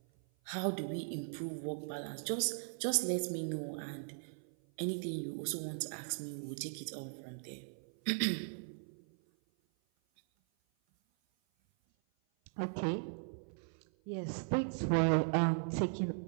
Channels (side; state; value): left; silent; 52 dB below the other